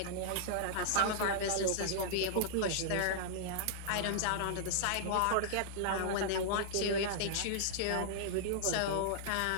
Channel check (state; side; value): different; both; correlation -0.01